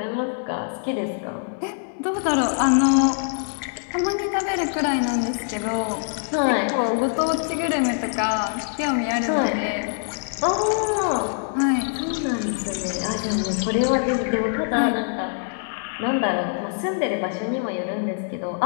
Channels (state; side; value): silent; right; digital silence